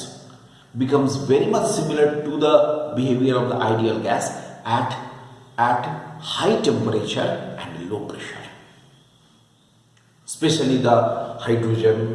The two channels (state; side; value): identical; both; correlation 1.00